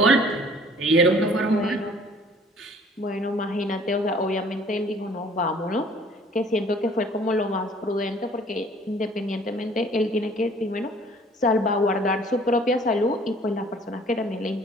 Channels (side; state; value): both; normal; correlation 0.54